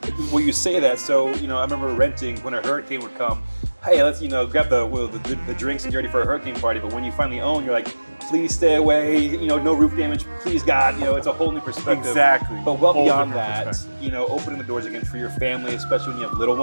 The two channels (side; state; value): both; inverted; correlation -1.00